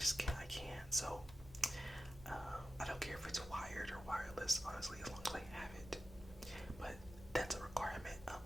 can't. I can't. So I don't care if it's wired or wireless, honestly, as long as I have it. But that's a requirement.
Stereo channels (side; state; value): both; normal; correlation 0.90